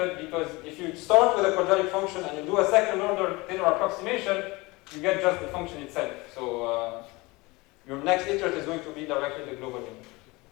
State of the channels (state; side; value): quieter; right; 23.4 dB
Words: because if you start with a quadratic function and you do a second order Taylor approximation, you get just the function itself. So your next iterate is going to be directly the global minimum.